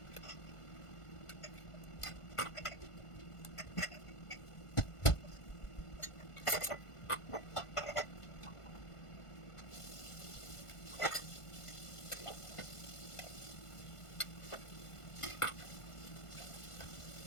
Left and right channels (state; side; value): late; right; 1.5 ms